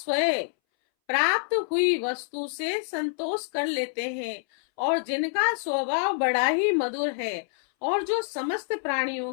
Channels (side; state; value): right; silent; 60 dB below the other